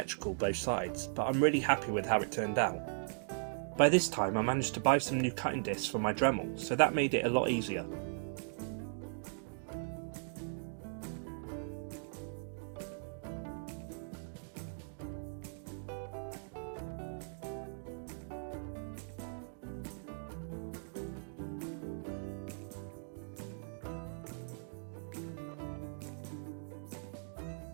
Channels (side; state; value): left; silent; digital silence